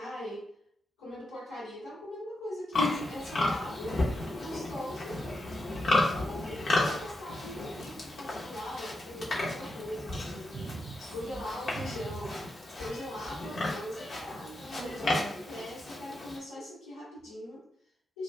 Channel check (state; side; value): normal; both; correlation 0.86